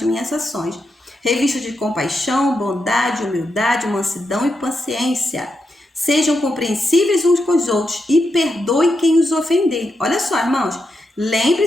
minhas ações. Revisto de compaixão, bondade, humildade, mansidão e paciência. Sejam compreensíveis uns com os outros e perdoem quem os ofender. Olha só, irmãos.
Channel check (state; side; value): normal; both; correlation 0.85